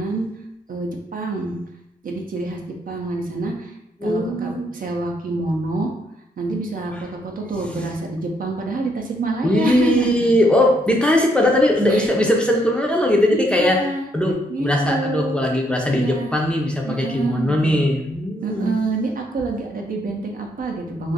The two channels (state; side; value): normal; both; correlation 0.73